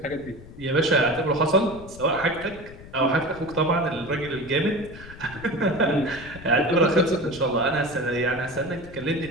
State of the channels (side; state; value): left; noise; rumble, 16 dB below the sound